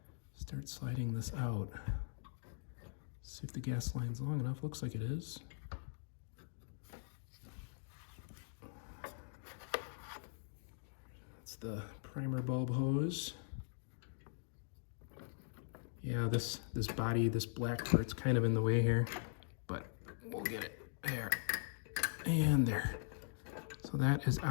start sliding this out. See if the gas line's long enough. Looks like it is. That's the primer bulb hose. Yeah, this body, this black part's kind of in the way here, but we'll get it there and there. So that is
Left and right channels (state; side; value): silent; right; digital silence